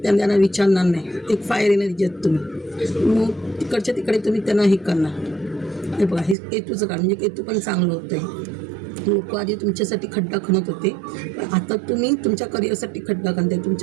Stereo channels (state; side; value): drops out; left; at 6.4 s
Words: त्यांना विचारणार नाही. एक फायर एनर्जी आहेत तुम्ही, मग तिकडच्या तिकडे तुम्ही त्यांना हे करणार. हे बघा, हे केतूचं काळ म्हणजे केतू पण चांगलं होतं आहे. लोक आधी तुमच्यासाठी खड्डा खणत होते, पण आता तुम्ही तुमच्या करिअरसाठी खड्डा खणताय,